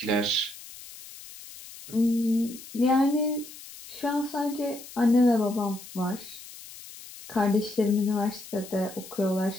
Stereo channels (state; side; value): noise; left; hiss, 16 dB below the sound